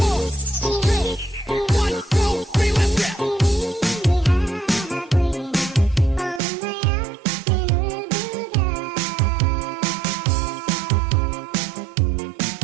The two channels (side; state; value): left; drops out; at 6.4 s